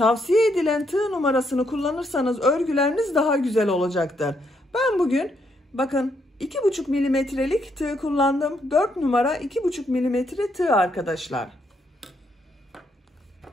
edilen tığ numarasını kullanırsanız örgüleriniz daha güzel olacaktır. Ben bugün bakın 2,5 milimetrelik tığ kullandım. 4 numara 2,5 milimetre tığ arkadaşlar.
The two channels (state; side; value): normal; both; correlation 0.75